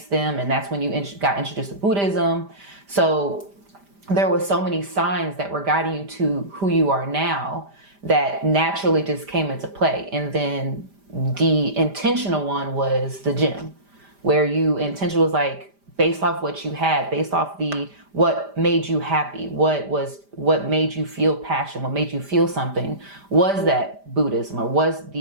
them, and that's when you got introduced to Buddhism. So there was so many signs that were guiding you to who you are now that naturally just came into play. And then the intentional one was the gym, where you intentional was like based off what you had, based off what made you happy, what made you feel passion, what made you feel something, was that Buddhism or was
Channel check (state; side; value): late; left; 5.0 ms